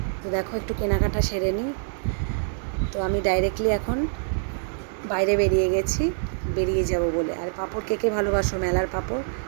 তো দেখো একটু কেনাকাটা সেরে নিই। তো আমি ডাইরেক্টলি এখন বাইরে বেরিয়ে যাব বলে। আর পাঁপড় কে ভালোবাসো, মেলার পাঁপড়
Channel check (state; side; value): silent; left; 62 dB below the other